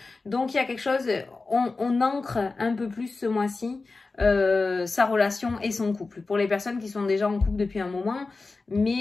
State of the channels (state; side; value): quieter; right; 3.8 dB